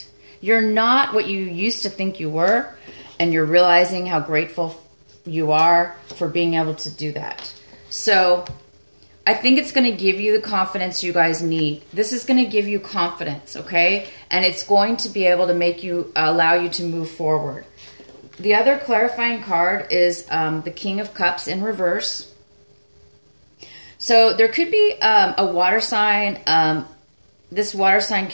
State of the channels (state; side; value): inverted; both; correlation -1.00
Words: You're not what you used to think you were, and you're realizing how grateful you are for being able to do that. So I think it's going to give you the confidence you guys need. This is going to give you confidence, okay? And it's going to be able to allow you to move forward. The other clarifying card is the King of Cups in reverse. So there could be a water sign. This water sign